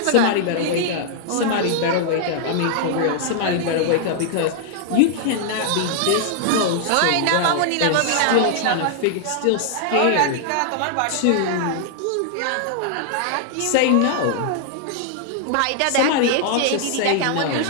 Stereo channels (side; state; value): both; different; correlation -0.01